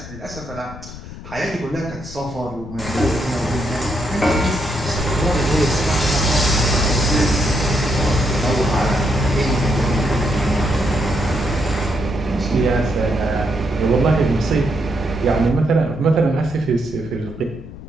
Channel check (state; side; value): noise; left; rumble, 13 dB below the sound